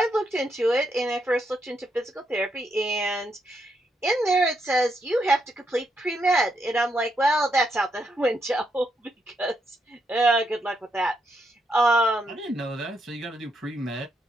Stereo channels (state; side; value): normal; both; correlation 0.80